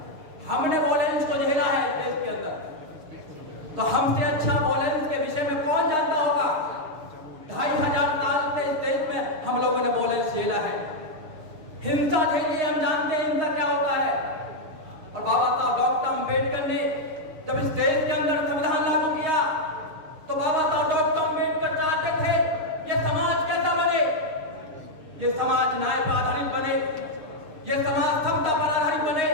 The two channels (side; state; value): left; late; 6.9 ms